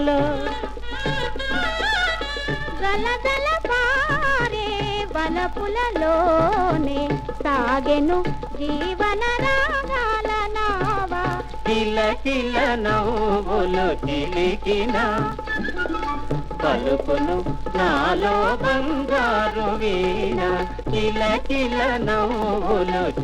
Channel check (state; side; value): identical; both; correlation 1.00